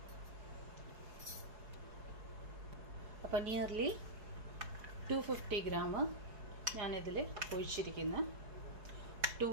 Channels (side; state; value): left; late; 4.7 ms